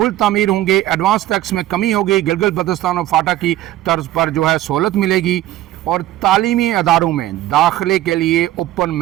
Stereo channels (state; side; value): quieter; left; 14.4 dB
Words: تعمیر ہوں گے. ایڈوانس ٹیکس میں کمی ہوگی. گلگت بلتستان اور فاٹا کی طرز پر جو ہے سہولت ملے گی. اور تعلیمی اداروں میں داخلے کے لیے اوپن